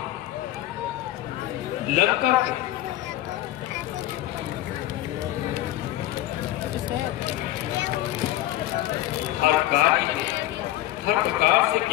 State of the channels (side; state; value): right; quieter; 14.8 dB